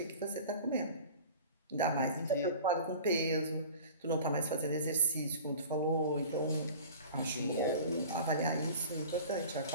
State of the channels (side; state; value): both; inverted; correlation -0.40